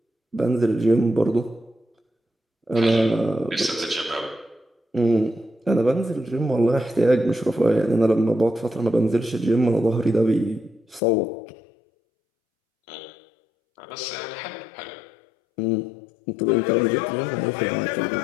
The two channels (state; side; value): drops out; right; at 11.0 s